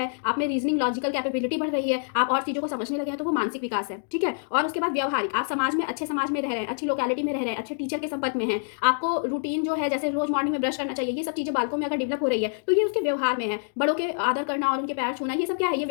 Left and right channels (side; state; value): right; silent; digital silence